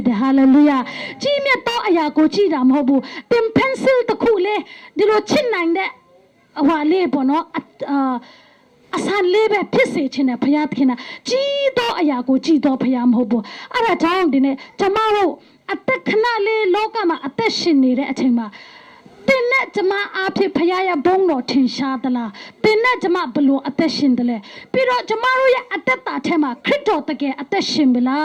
တယ် hallelujah ကြီးမြတ်သောအရာကိုကြည့်တာမဟုတ်ဘူးသင် pencil တစ်ခုလေဒီလိုချစ်နိုင်တဲ့ဟွာလေးပေါ့နော်အဆန်လေးပဲဖြစ်စေခြင်းနဲ့ဖယားသခင်ကကြီးသောအရာကိုကြည့်တော်ဖယားမဟုတ်ဘူးအဲ့ဒါကြောင့်ဒီနေ့ကျမတို့အသက်ခဏလေးလောကမှာအသက်ရှင်နေတဲ့အချိန်မှာတင်နဲ့ကျမအားဖြင့်ဖယားရဲ့ဘုန်းတော်ထင်ရှားသလားတင်နဲ့ကျမဘလို့အသက်ရှင်တယ်လဲပြီးတော့ကျမတို့ရဲ့အသက်တာထဲမှာခရစ်တော်တကယ်အသက်ရှင်ပြီလာ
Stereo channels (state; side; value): identical; both; correlation 1.00